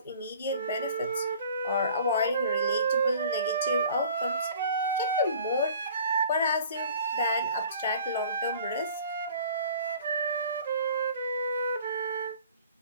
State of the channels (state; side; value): inverted; both; correlation -0.49